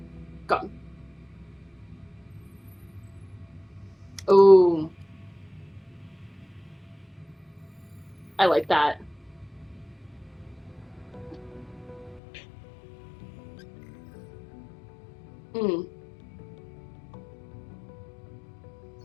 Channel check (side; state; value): right; drops out; at 12.2 s